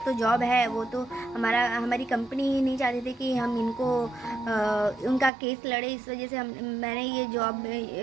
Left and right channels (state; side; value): drops out; left; at 5.3 s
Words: तो जॉब है, वो तो हमारी कंपनी ही नहीं चाहती थी कि हम इनको उनका केस लड़े, इस वजह से मैंने